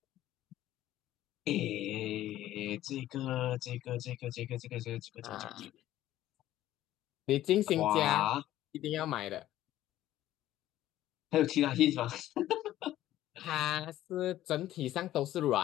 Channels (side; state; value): right; quieter; 13.8 dB